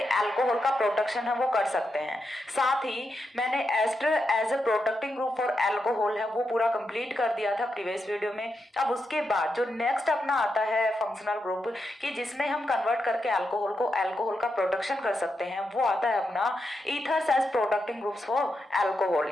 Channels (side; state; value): both; normal; correlation 0.85